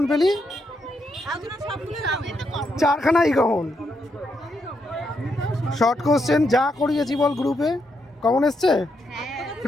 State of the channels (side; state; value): both; normal; correlation 0.80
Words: পেলি? চারখানাই কমন। শর্ট কোশ্চেন যা করিয়েছি বল গ্রুপে কমন এসছে?